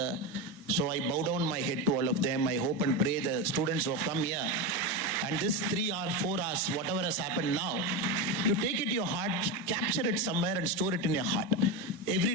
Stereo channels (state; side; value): normal; both; correlation 0.16